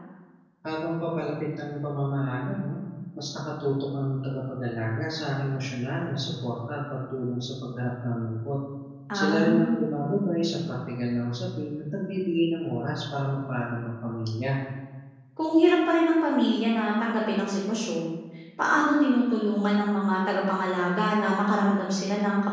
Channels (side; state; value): both; identical; correlation 1.00